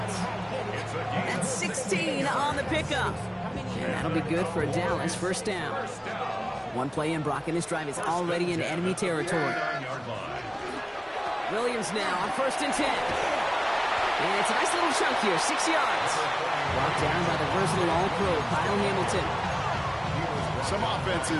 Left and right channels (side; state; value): both; identical; correlation 1.00